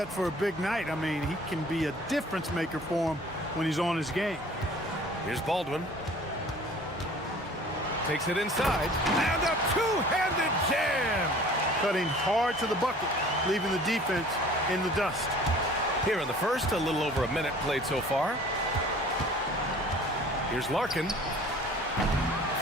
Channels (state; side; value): normal; both; correlation 0.48